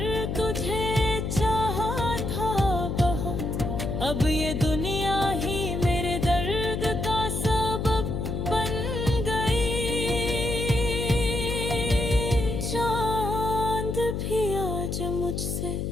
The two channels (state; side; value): noise; left; hum, 2 dB below the sound